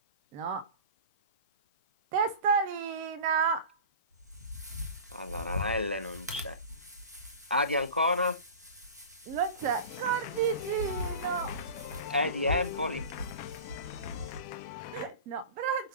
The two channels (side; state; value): both; inverted; correlation -0.35